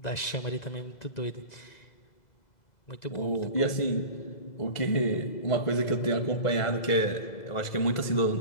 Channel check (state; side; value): late; right; 2.0 ms